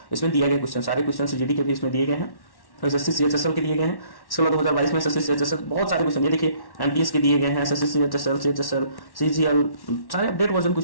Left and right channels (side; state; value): right; late; 1.1 ms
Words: इसमें दिया गया, क्वेश्चन सारे क्वेश्चन जीडी के भी इसमें दिए गए हैं, एसएससी सीएचएसएल के दिए गए हैं। इसके बाद 2022 में एसएससी सीएचएसएल बहुत सारे क्वेश्चन, ये देखिए एमटीएस के दिए गए हैं, एसएससी सीएचएसएल सीजीएल, सारे अपडेट वर्जन